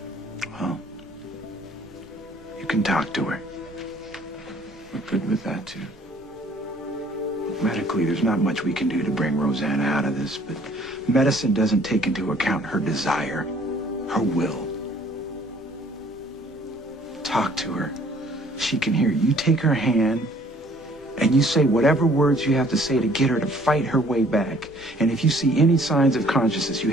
Well, you can talk to her. We're good with that, too. Medically, there's not much we can do to bring Rosanna out of this, but medicine doesn't take into account her desire, her will. Talk to her. She can hear you. You take her hand, and you say whatever words you have to say to get her to fight her way back. And if you see any signs of consciousness, you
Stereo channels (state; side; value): normal; both; correlation 0.58